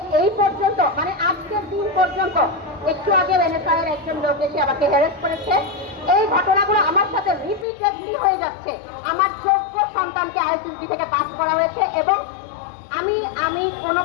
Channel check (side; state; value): right; drops out; at 7.7 s